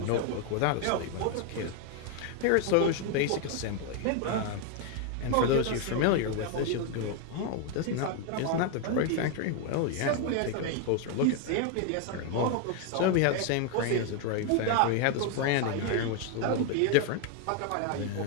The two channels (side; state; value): both; different; correlation 0.01